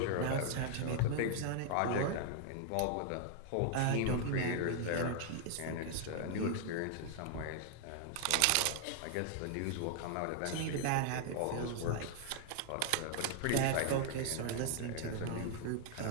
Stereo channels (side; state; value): both; different; correlation 0.00